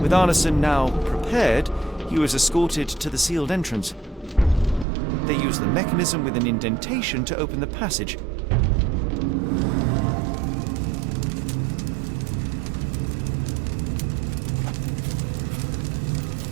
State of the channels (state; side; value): drops out; left; at 4.9 s